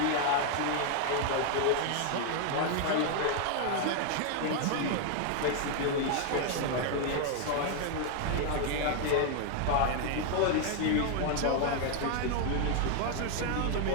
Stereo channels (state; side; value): different; both; correlation 0.00